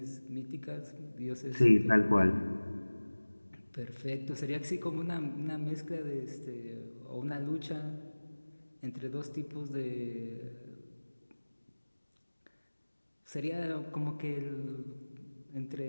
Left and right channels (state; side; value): inverted; both; correlation -1.00